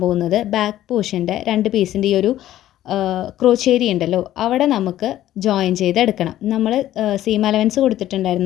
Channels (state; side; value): quieter; right; 13.3 dB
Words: പോകുന്നത് ബാക്ക് പോർഷൻ്റെ 2 പീസിൻ്റെ ഈ ഒരു ക്രോച്ചേരി ഉണ്ടല്ലോ അവിടെ നമുക്ക് ജോയിൻ ചെയ്തെടുക്കണം. നമ്മൾ സീം അലവൻസ്